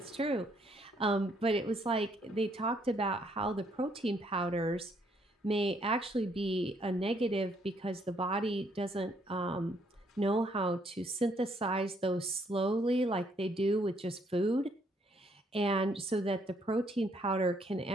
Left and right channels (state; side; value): normal; both; correlation 0.69